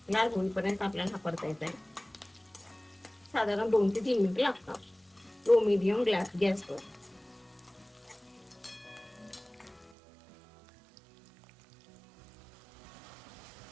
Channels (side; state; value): left; drops out; at 9.9 s